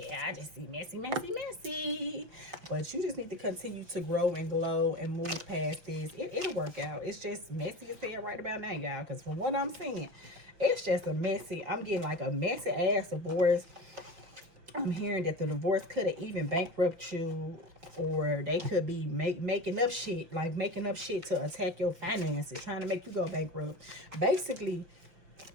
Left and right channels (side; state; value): left; late; 5.8 ms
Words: I just see messy. But you just need to continue to grow and glow and move past this. It'll work out. It's just messy as hell right about now, y'all. Because from what I'm seeing, it's just a messy. I'm getting like a messy ass divorce. I'm hearing that the divorce could have even bankrupt you, or they could be making up shit to attack your finances, trying to make you go bankrupt. Basically,